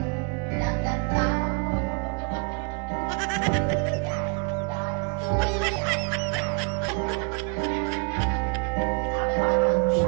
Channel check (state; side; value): quieter; left; 35.1 dB